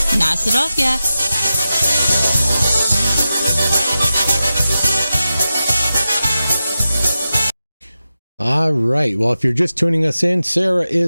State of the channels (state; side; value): inverted; both; correlation -0.92